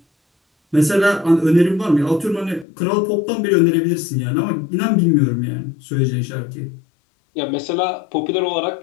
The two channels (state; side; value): drops out; right; at 2.7 s